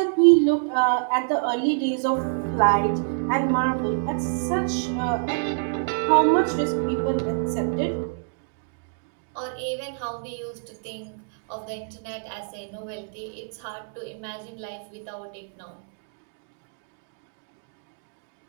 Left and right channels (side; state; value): left; silent; digital silence